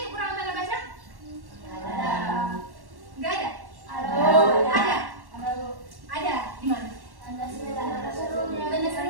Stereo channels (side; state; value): left; late; 1.1 ms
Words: kekurangan tanda baca? Enggak ada? Ada. Ada. Di mana? Tanda